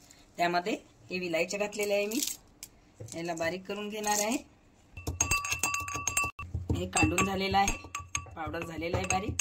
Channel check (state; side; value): identical; both; correlation 1.00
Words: त्यामध्ये हे विलायची घातलेले आहे मी। याला बारीक करून घेणार आहे। हे काढून झालेलं आहे, पावडर झालेला आहे